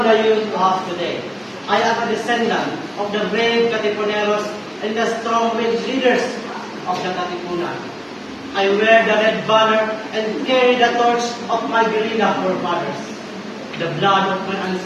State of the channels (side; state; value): both; identical; correlation 1.00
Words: the youth of today. I am a descendant of the brave Katipuneros and the strong-willed leaders of the Katipunan. I wear the red banner and carry the torch of my guerrilla forefathers. The blood of my